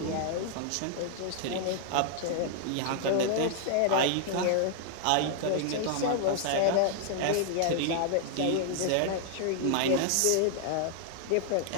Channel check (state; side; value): different; both; correlation -0.01